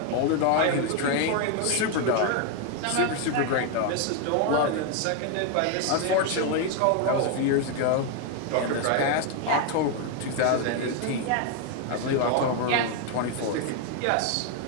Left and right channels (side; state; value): both; different; correlation 0.01